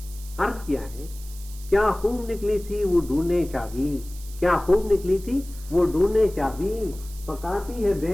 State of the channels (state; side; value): noise; right; hiss, 18 dB below the sound